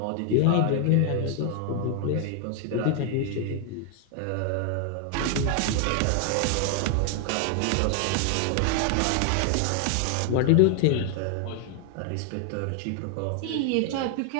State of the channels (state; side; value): different; both; correlation 0.00